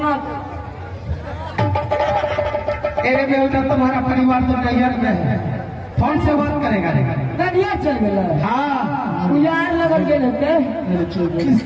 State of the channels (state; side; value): identical; both; correlation 1.00